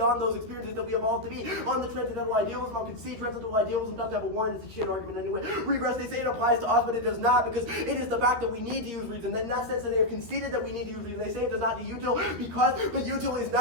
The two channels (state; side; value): late; left; 13 ms